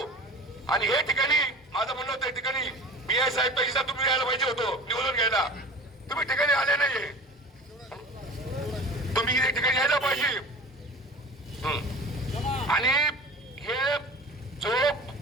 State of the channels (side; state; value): both; normal; correlation 0.37